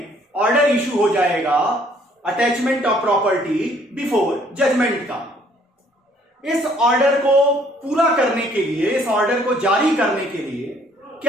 ऑर्डर इशू हो जाएगा attachment of property before judgment का। इस ऑर्डर को पूरा करने के लिए, इस ऑर्डर को जारी करने के लिए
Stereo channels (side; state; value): both; normal; correlation 0.62